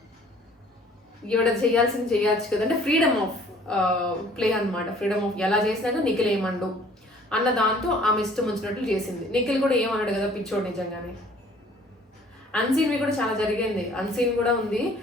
ఈవిడ చేయాల్సింది చేయొచ్చు కదా, అంటే ఫ్రీడమ్ ఆఫ్ ప్లే అనమాట. ఫ్రీడమ్ ఆఫ్ ఎలా చేసినాక నిఖిల్ ఏమండు అన్న దాంతో ఆమె ఇష్టం వచ్చినట్లు చేసింది. నిఖిల్ కూడా ఏమన్నాడు కదా పిచ్చోడు నిజంగానే. అన్సీన్వి కూడా చాలా జరిగింది, అన్సీన్ కూడా ఉంది.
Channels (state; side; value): normal; both; correlation 0.55